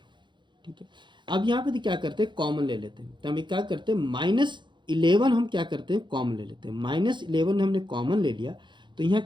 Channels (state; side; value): late; left; 0.23 ms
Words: ठीक है, अब यहाँ पे क्या करते हैं कॉमन ले लेते हैं, तो हम क्या करते हैं -11 हम क्या करते हैं कॉमन ले लेते हैं। -11 हमने कॉमन ले लिया तो यहाँ